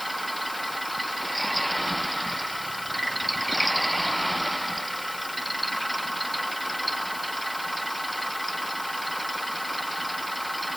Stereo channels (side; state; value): left; noise; hiss, 10 dB below the sound